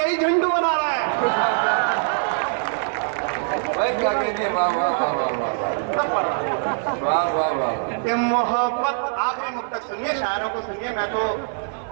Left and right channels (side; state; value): left; silent; digital silence